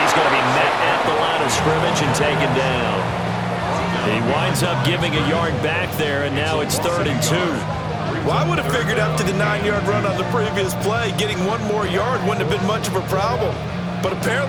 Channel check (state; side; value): identical; both; correlation 1.00